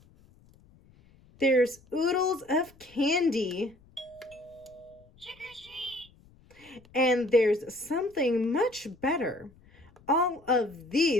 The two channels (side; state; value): left; noise; rumble, 28 dB below the sound